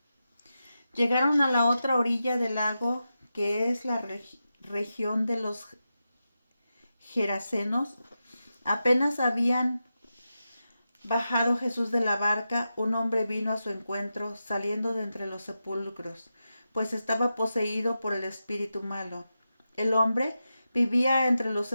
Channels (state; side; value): inverted; both; correlation -0.90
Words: Llegaron a la otra orilla del lago, que es la región de los Gerasenos. Apenas habían bajado Jesús de la barca, un hombre vino a su encuentro, saliendo de entre los sepulcros, pues estaba poseído por el espíritu malo. El hombre vivía entre los